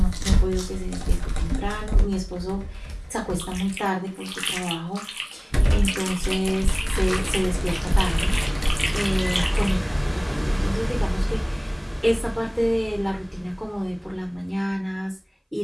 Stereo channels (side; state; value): both; identical; correlation 1.00